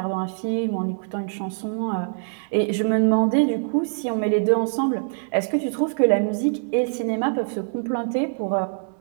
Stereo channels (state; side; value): silent; left; digital silence